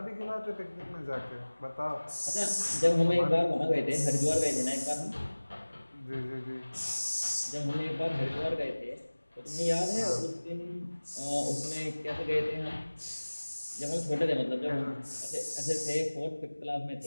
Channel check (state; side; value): inverted; both; correlation -1.00